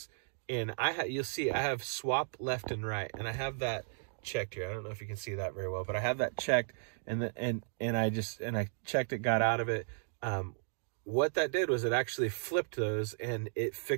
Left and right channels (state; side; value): silent; left; digital silence